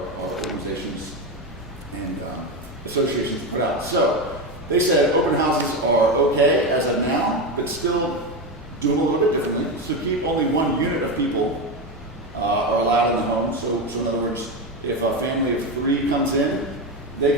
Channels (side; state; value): both; normal; correlation 0.15